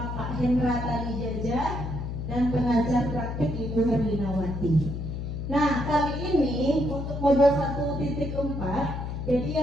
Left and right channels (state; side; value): noise; left; hum, 5 dB below the sound